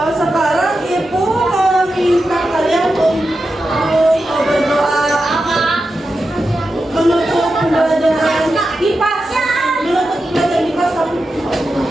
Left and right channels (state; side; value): normal; both; correlation 0.90